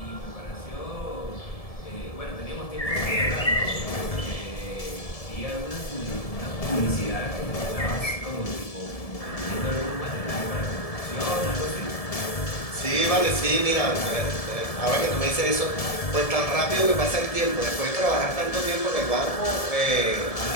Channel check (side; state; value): right; late; 1.7 ms